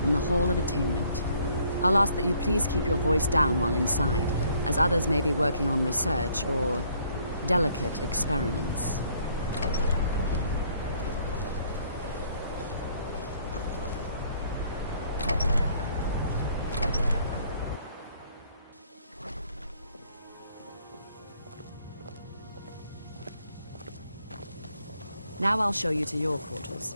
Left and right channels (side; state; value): both; inverted; correlation -0.64